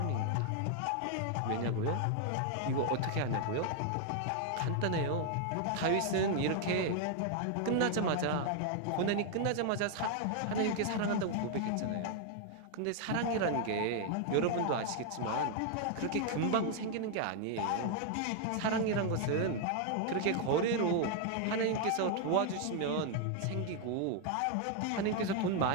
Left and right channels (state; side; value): different; both; correlation 0.00